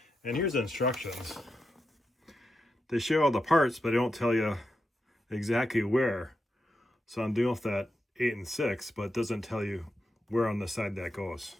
And here's the instructions. They show all the parts, but they don't tell you exactly where. So I'm doing with that 8 and 6, but it doesn't tell you where on the side that goes.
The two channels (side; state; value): both; normal; correlation 0.87